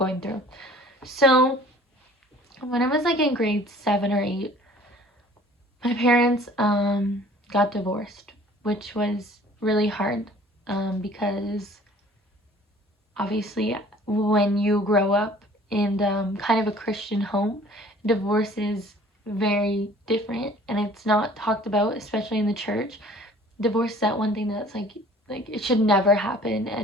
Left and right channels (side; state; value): both; normal; correlation 0.51